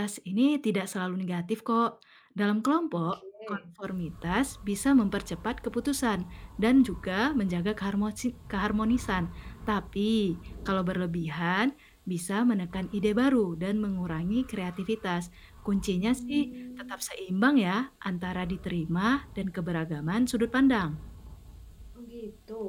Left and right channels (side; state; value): both; identical; correlation 1.00